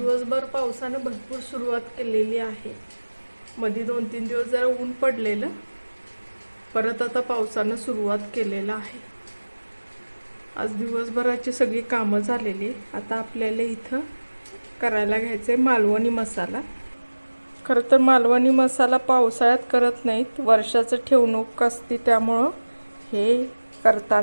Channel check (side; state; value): both; inverted; correlation -1.00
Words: पावसाने भरपूर सुरुवात केलेली आहे. मध्ये 2-3 दिवस जरा ऊन पडलेलं, परत आता पावसानं सुरुवात केलेला आहे. आज दिवसभराची सगळी कामं झालेली. आता आपल्याला इथं करायला घ्यायचं आहे मालवणी मसाला. खरं तर मालवणी मसाला पावसाळ्यात करत नाहीत, वर्षाचं ठेवणूक असते, त्यामुळं हे